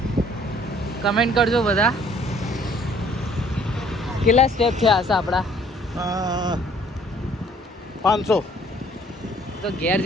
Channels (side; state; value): both; normal; correlation 0.59